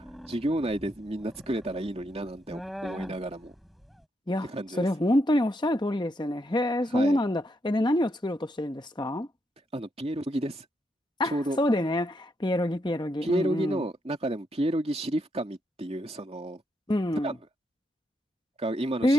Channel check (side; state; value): both; normal; correlation 0.79